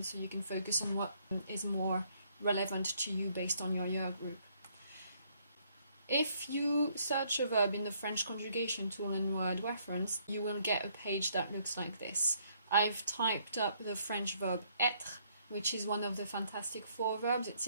so you can focus on what is more relevant to you based on your year group. If you search a verb in the French conjugation tool in Wordreference, you will get a page that looks like this. I've typed up the French verb être, which is one of the fantastic 4 verbs. It's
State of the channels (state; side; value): inverted; both; correlation -0.68